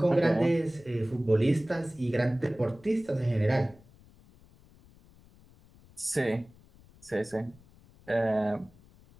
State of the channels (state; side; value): noise; left; rumble, 26 dB below the sound